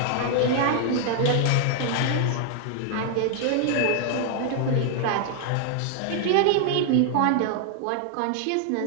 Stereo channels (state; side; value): different; both; correlation 0.00